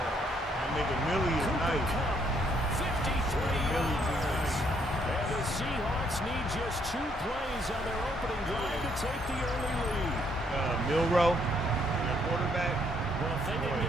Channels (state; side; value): normal; both; correlation 0.70